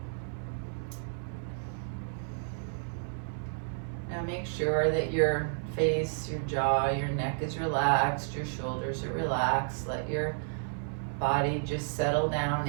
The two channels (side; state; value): left; silent; 57 dB below the other